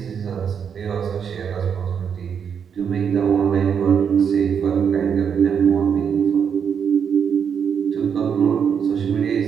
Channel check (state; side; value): quieter; left; 7.3 dB